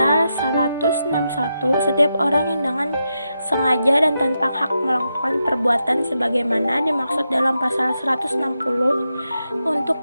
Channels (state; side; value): inverted; both; correlation -0.86